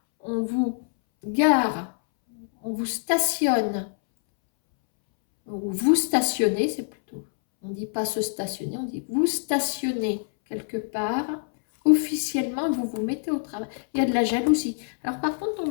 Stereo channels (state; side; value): silent; right; 61 dB below the other